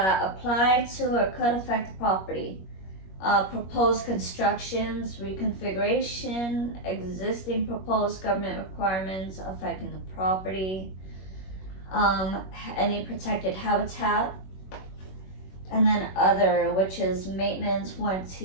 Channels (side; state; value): right; late; 21 ms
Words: apply to or could affect the property. Proposed constructions, reconfiguration, existing proposed government requirements affecting the property, any protected habitat, and then other, which is maintenance,